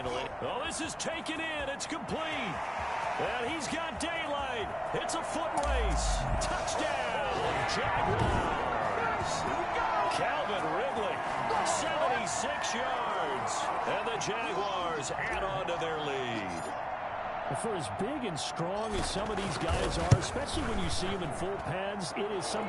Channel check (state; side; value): identical; both; correlation 1.00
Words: it. Oh, this is taken in. It's complete. And he's got daylight. It's a foot race. Touchdown, Jaguars. Calvin Ridley, 76 yards. And the Jaguars add on to their lead. For as big and strong as some of these guys are, especially when you see them in full pads, it is